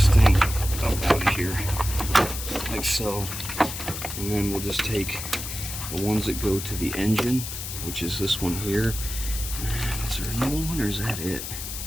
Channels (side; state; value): left; noise; hiss, 7 dB below the sound